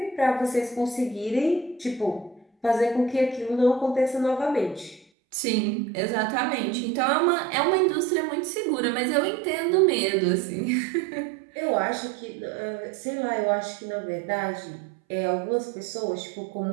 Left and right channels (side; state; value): left; drops out; at 5.1 s